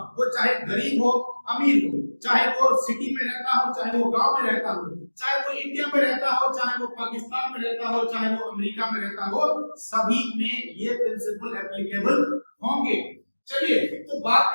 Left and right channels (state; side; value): inverted; both; correlation -1.00